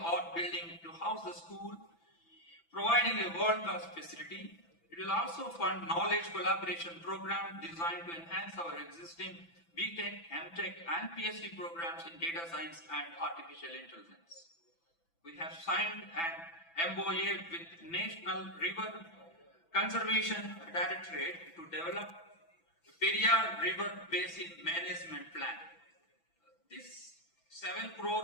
building to house the school, providing a world-class facility. It will also fund knowledge collaboration program designed to enhance our existing BTech, MTech and PhD programs in data science and artificial intelligence. We have signed an MOA with National River Conservation Directorate to develop Periyar River Basin Management Plan. This 7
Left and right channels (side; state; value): right; late; 6.0 ms